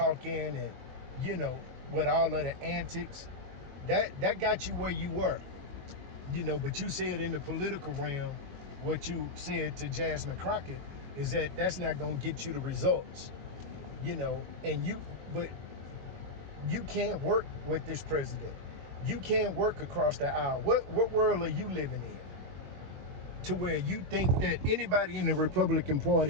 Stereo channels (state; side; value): late; left; 21 ms